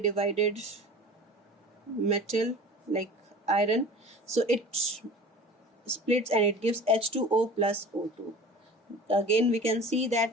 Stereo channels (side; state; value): both; normal; correlation 0.40